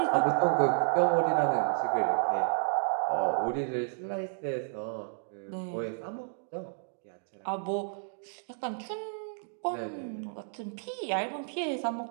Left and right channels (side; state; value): left; silent; digital silence